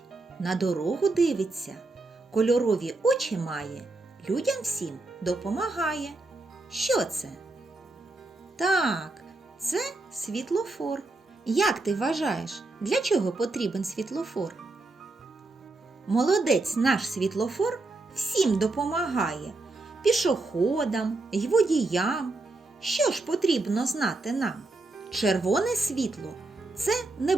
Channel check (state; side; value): quieter; left; 3.2 dB